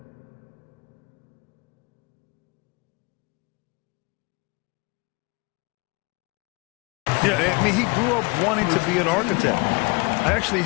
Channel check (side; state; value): right; quieter; 27.5 dB